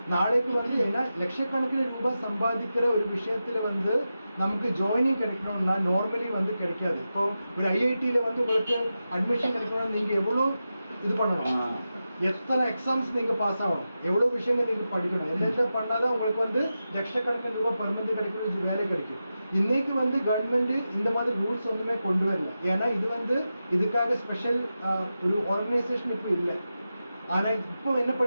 நாளைக்கு வந்து ஏன்னா லட்சக்கணக்கில் ரூபாய் சம்பாதிக்கிற ஒரு விஷயத்துல வந்து நமக்கு ஜாயினிங் கிடைக்கணும்னா நார்மலி வந்து கிடைக்காது. இப்போ ஒரு ஐஐடியில வந்து உங்களுக்கு அட்மிஷன் கிடைக்கணும்னா நீங்க எவ்வளோ இது பண்ணணும், எத்தனை எக்ஸாம்ஸ் நீங்க பாஸ் ஆகணும், எவ்வளவு விஷயங்கள் நீங்க படிக்கணும், எல்லாம் பண்ணாதான் உங்களுக்கு வந்து லட்சக்கணக்கில் ரூபாய் பெர்மனன்ட் கிடைக்கிற வேலை கிடைக்கும். இன்னைக்கு வந்து கவர்மெண்ட் இந்த மாதிரி ரூல்ஸ் ஒன்றுமே கொண்டு வரல. ஏன்னா இது வந்து இதுக்காக ஸ்பெஷல் ஒரு ஆர்கனைசேஷன் இப்போ இல்லை. ஆனா இப்போ என்ன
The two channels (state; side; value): inverted; both; correlation -0.91